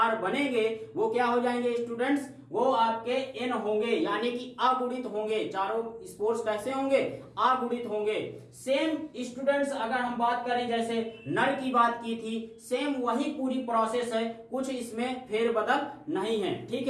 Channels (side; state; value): both; identical; correlation 1.00